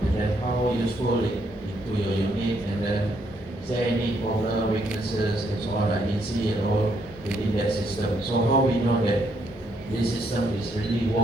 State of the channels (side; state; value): both; normal; correlation 0.73